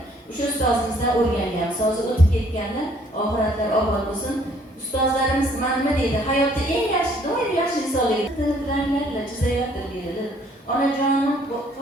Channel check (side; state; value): both; normal; correlation 0.62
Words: O'sha ustozimizdan o'rganganmiz. Hozir o'tib ketganlar, oxiratlar obod bo'lsin. Ustozlarimiz nima deydi? Hayotda eng yaxshi, doim yaxshi insonlarga chizayotir deydi. Onajonim